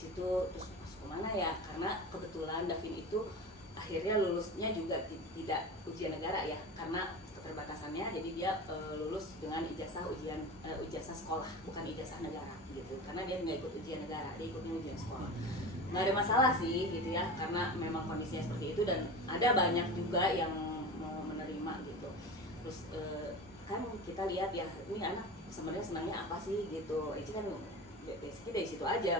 terus masuk kemana ya, karena kebetulan Davin itu akhirnya lulusnya juga tidak ujian negara ya, karena keterbatasannya. Jadi dia lulus dengan ijazah sekolah, bukan ijazah negara gitu, karena dia nggak ikut ujian negara, dia ikutnya ujian sekolah. Nggak ada masalah sih gitu ya, karena memang kondisinya seperti itu dan ada banyak juga yang mau menerima gitu. Terus kan kita lihat ya, ini anak sebenarnya senangnya apa sih gitu. Eci kan basicnya dari situ aja,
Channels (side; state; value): both; normal; correlation 0.30